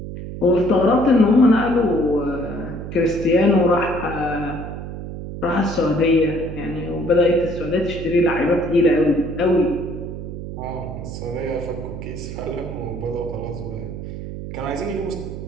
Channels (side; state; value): right; noise; hum, 8 dB below the sound